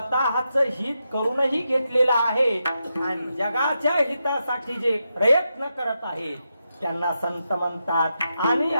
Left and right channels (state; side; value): inverted; both; correlation -0.86